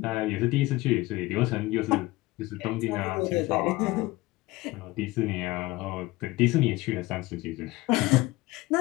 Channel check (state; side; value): quieter; right; 19.9 dB